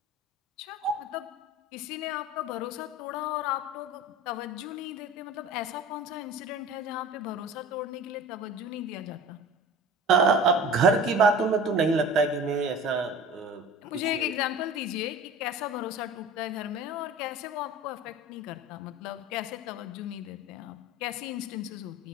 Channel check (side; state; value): both; normal; correlation 0.38